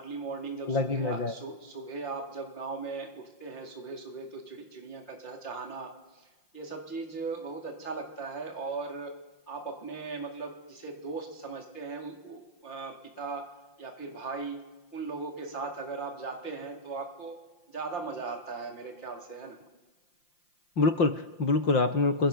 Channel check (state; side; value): late; right; 5.7 ms